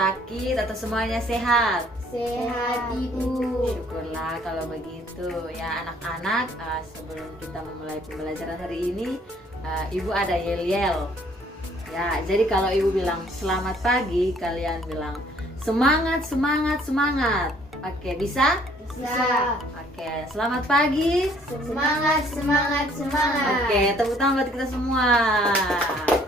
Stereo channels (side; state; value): both; normal; correlation 0.61